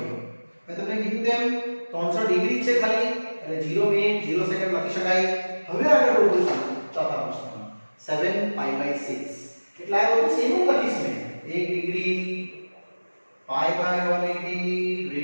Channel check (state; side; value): inverted; both; correlation -1.00